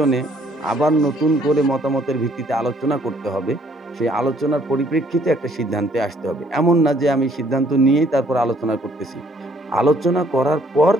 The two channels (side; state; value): both; normal; correlation 0.64